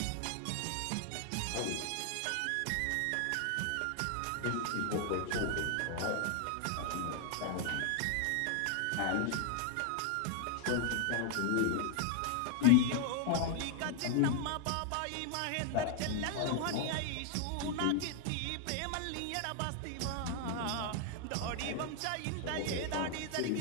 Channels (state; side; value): different; both; correlation 0.00